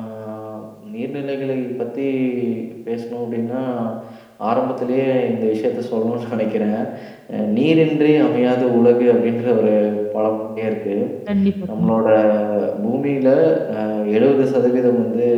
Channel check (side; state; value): both; identical; correlation 1.00